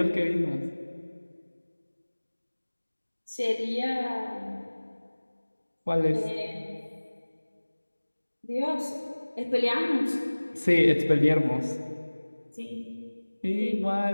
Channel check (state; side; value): inverted; both; correlation -1.00